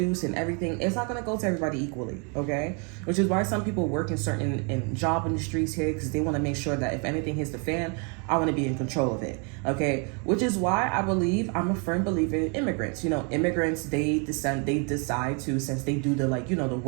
and everything, it's not gonna go to everybody equally. Okay, which is why some people work in certain job industries here, because they want to make sure that if anything hits the fan, I want to be in control of it. Okay, which is why I'm a firm believer in immigrants. Immigrants, they decide to, since they do the the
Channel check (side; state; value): left; quieter; 35.9 dB